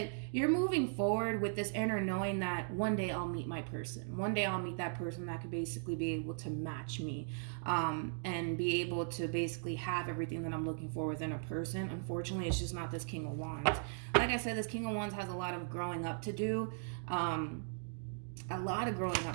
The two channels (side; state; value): left; silent; digital silence